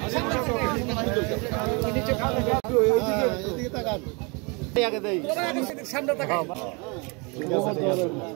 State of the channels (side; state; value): left; quieter; 30.5 dB